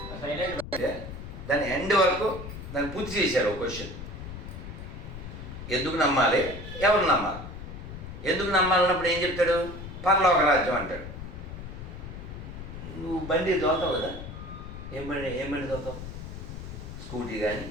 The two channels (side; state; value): left; noise; rumble, 10 dB below the sound